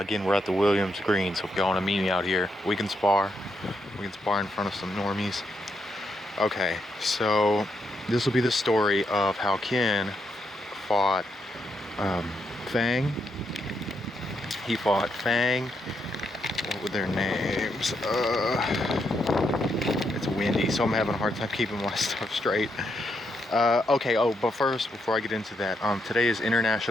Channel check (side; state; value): both; normal; correlation 0.80